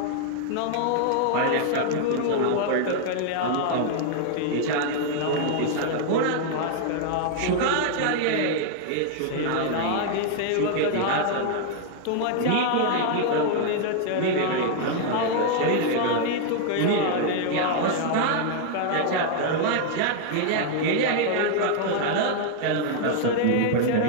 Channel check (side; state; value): both; different; correlation 0.00